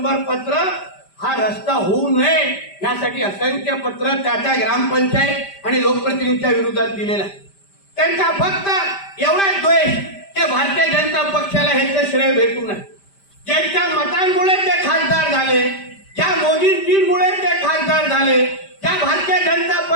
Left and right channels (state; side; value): late; right; 5.1 ms